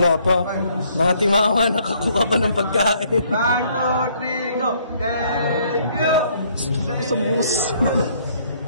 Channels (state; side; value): inverted; both; correlation -0.65